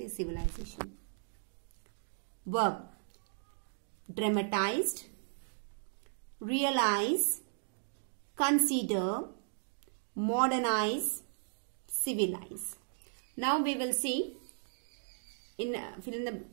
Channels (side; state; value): left; silent; digital silence